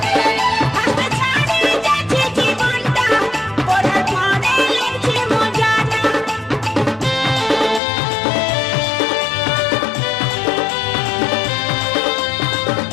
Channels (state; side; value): drops out; right; at 7.8 s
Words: হাসতে ছাড়ে যাচ্ছে জীবনটা, পড়ার পরে লেগছে মজাটা।